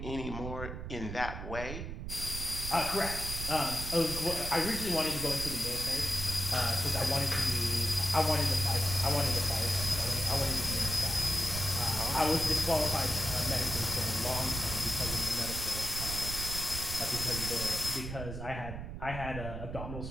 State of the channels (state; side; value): noise; right; rumble, 7 dB below the sound